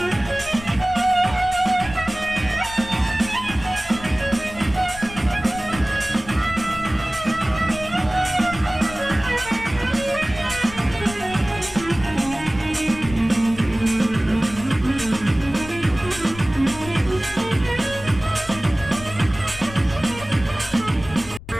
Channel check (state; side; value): noise; left; rumble, 14 dB below the sound